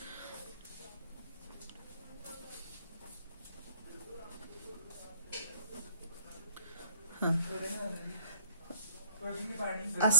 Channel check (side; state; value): both; inverted; correlation -0.58